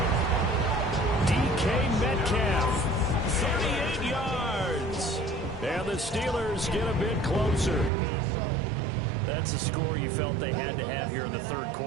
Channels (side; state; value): left; drops out; at 7.9 s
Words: DK Metcalf, 38 yards. And the Steelers get a bit closer. That's a score you felt they had to have here in the third